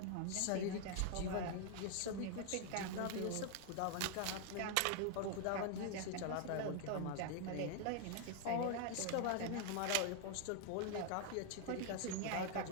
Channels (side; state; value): both; different; correlation 0.00